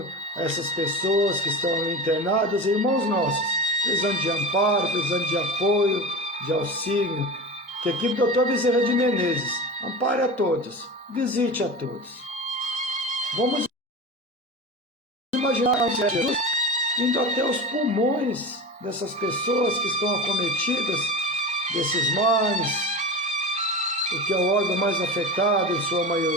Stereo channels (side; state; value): both; normal; correlation 0.28